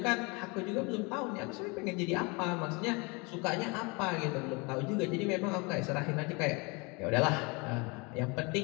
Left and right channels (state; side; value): quieter; right; 28.7 dB